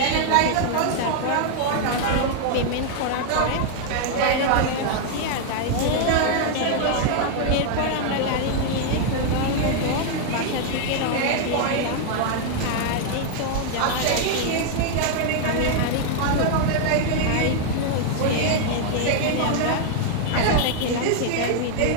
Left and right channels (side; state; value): both; different; correlation 0.00